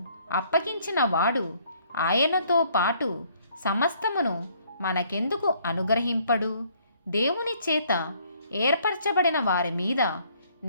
అప్పగించిన వాడు ఆయనతో పాటు సమస్తమును మనకెందుకు అనుగ్రహింపడు? దేవుని చేత ఏర్పరచబడిన వారి మీద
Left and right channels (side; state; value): both; inverted; correlation -0.63